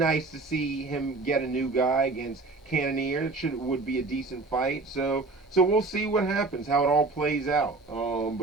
to see him get a new guy against Cannonier. Would be a decent fight. So we'll see what happens, how it all plays out.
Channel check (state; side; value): quieter; left; 3.6 dB